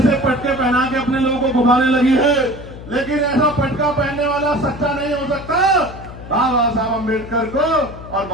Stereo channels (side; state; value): left; noise; hum, 14 dB below the sound